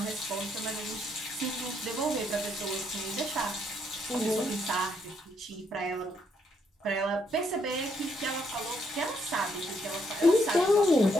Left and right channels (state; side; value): normal; both; correlation 0.73